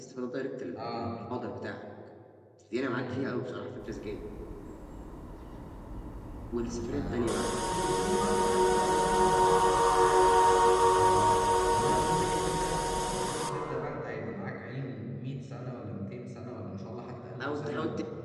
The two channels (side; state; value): both; identical; correlation 1.00